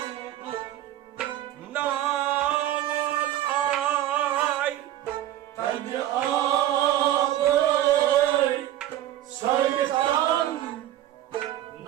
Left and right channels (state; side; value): quieter; left; 13.0 dB